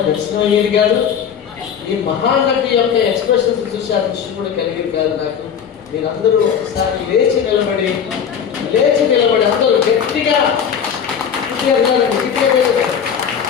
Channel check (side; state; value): right; quieter; 7.8 dB